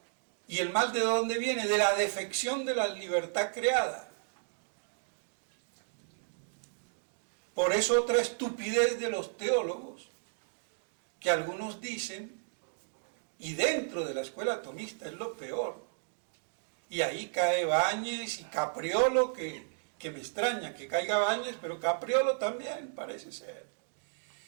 ¿Y el mal de dónde viene? De la defección de la libertad creada. Por eso otra estupidez de los teólogos, que algunos dicen Y dentro de la escuela atomista es lo peor. Y ahí cae Báñez y Capriolo, que me extraña que caiga Báñez, pero Capriolo también parece ser.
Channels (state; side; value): silent; left; digital silence